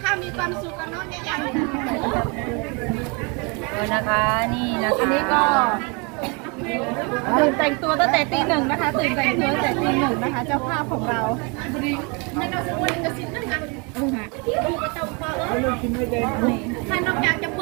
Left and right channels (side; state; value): left; quieter; 31.5 dB